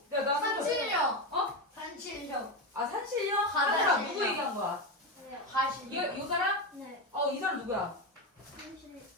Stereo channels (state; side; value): normal; both; correlation 0.14